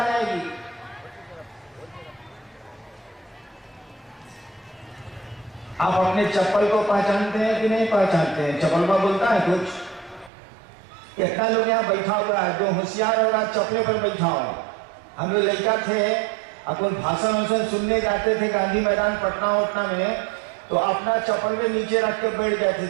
जाएगी। आप अपने चप्पल को पहचानते हैं कि नहीं पहचानते हैं? चप्पल का बोलता है कुछ? कितना लोग यहाँ बैठा हुआ है जो होशियार होगा चप्पले पर बैठा होगा। हम लोग लड़का थे, अपन भाषण सुनने जाते थे गांधी मैदान पटना में, तो अपना चप्पल में नीचे रख के बैठ जाते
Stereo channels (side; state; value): left; drops out; at 10.3 s